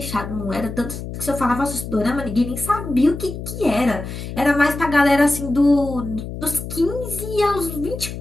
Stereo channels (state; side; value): noise; left; hum, 8 dB below the sound